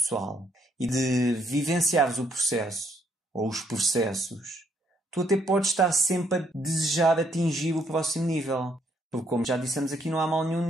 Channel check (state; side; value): normal; both; correlation 0.71